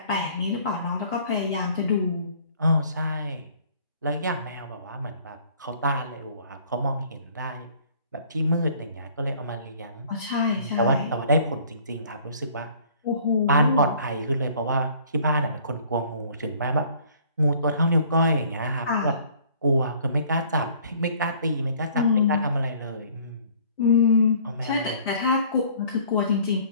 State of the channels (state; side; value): inverted; both; correlation -0.55